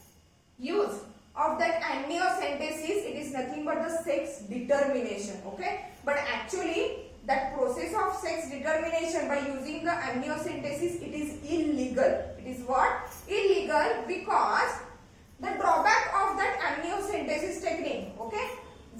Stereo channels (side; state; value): both; identical; correlation 1.00